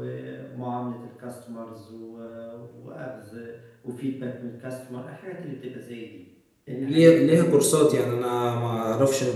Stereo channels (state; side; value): identical; both; correlation 1.00